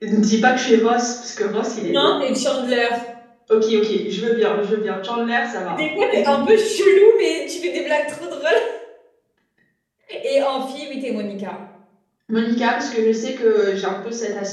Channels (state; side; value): identical; both; correlation 1.00